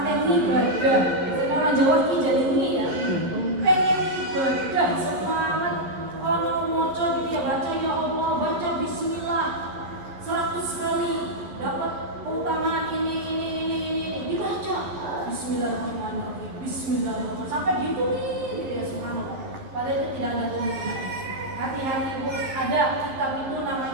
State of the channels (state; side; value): late; left; 11 ms